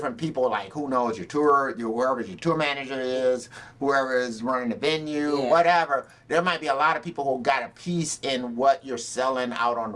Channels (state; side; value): identical; both; correlation 1.00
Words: people, like, who knows, whoever your tour manager is, whoever is running the venue, whatever, there might be a lot of people who got a piece in what you're selling out on